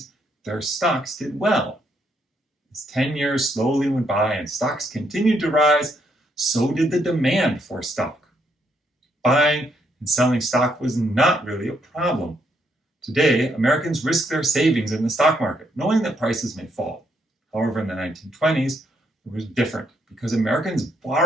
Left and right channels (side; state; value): both; normal; correlation 0.74